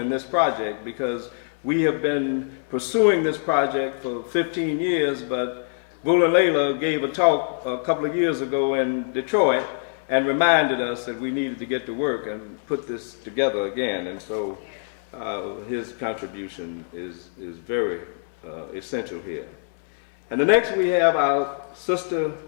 this project, because we have been pursuing this project for 15 years, but Buland Leyla gave a talk a couple of years ago in Detroit and reminded us that we needed to get to work and put this together again. And so his contribution is very essential here. And the next we have our sister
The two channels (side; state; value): right; silent; 62 dB below the other